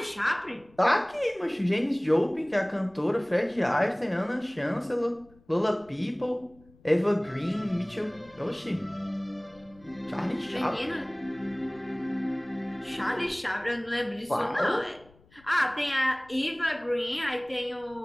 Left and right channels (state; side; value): noise; left; rumble, 28 dB below the sound